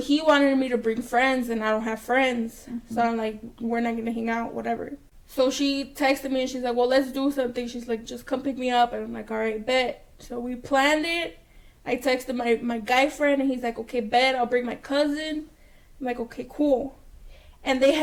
he wanted me to bring friends, and I don't have friends. So I'm like, we're not going to hang out, whatever. So she texted me and she's like, "Well, let's do something." She's like, "Just come pick me up." And I'm like, "All right, bet." So we planned it. I texted my guy friend and he's like, "Okay, bet. I'll bring my cousin." I'm like, "Okay, cool." And they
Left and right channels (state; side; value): identical; both; correlation 1.00